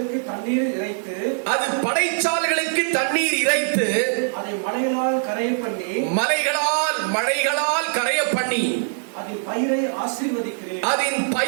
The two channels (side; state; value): left; silent; digital silence